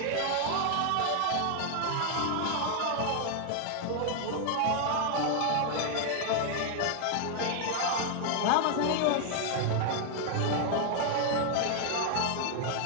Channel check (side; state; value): both; different; correlation 0.00